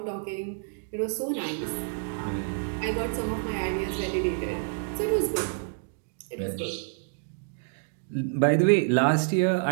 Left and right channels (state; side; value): silent; left; 59 dB below the other